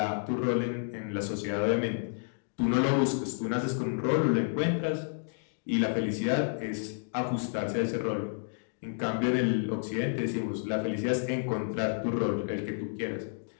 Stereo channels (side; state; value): right; silent; digital silence